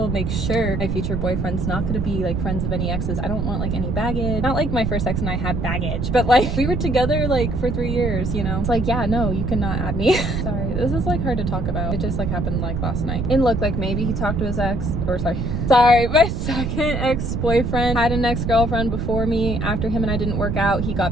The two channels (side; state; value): right; noise; rumble, 1 dB below the sound